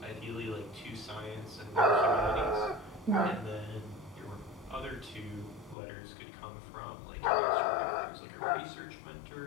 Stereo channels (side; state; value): right; drops out; at 5.8 s